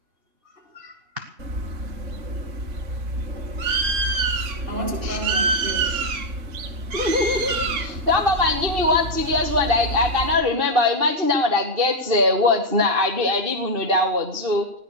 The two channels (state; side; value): late; left; 2.7 ms